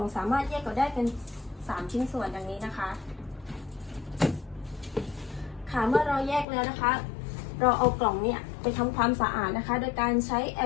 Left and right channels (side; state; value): right; drops out; at 6.5 s